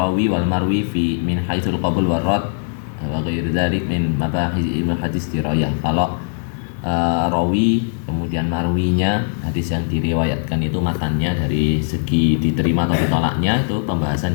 wal marwi fi min haitsul qabul war rad wa ghairi dzalik min mabahis ilmu hadis dirayah. Kalau rawi kemudian marwinya, hadis yang diriwayatkan itu matannya dari segi diterima atau ditolaknya, itu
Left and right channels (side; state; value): right; silent; digital silence